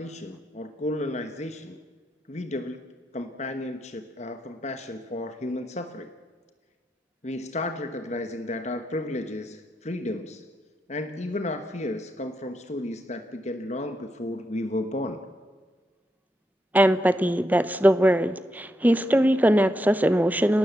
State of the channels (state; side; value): normal; both; correlation 0.83